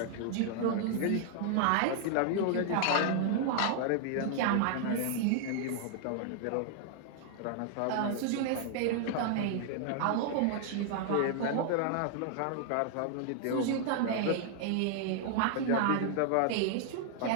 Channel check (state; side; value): different; both; correlation 0.00